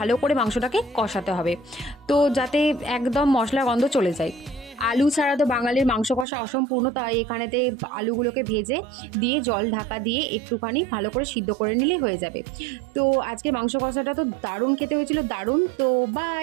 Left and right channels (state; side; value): drops out; left; at 6.2 s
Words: করে মাংসটাকে কষাতে হবে, তো যাতে একদম মশলা গন্ধ চলে যায়। আলু ছাড়া তো বাঙালির মাংস কষা অসম্পূর্ণ, তাই এখানেতে আলুগুলোকে ভেজে দিয়ে জল ঢাকা দিয়ে একটুখানি ভালো করে সিদ্ধ করে নিলেই হয়ে যাবে। তো আজকে মাংস কষাটা তো দারুণ খেতে হয়েছিল, দারুণ। তো